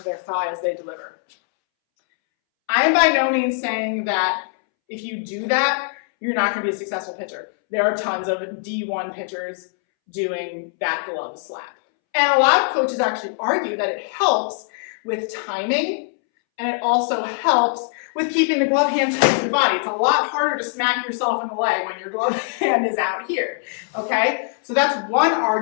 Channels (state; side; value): silent; right; 64 dB below the other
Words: their thigh as they deliver. I am by no means saying that if you do that, you're not going to be a successful pitcher. There are tons of D1 pitchers doing that glove slap. And a lot of coaches actually argue that it helps with timing, and it also helps with keeping the glove hand tight to the body. It's a lot harder to smack yourself in the leg when your glove hand is out here, okay? So that's one